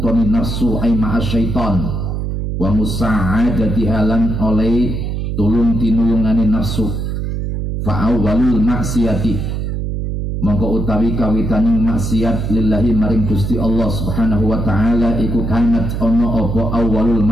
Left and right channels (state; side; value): noise; right; hum, 3 dB below the sound